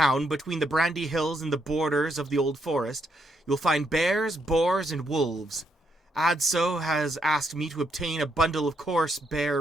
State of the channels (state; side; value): normal; both; correlation 0.76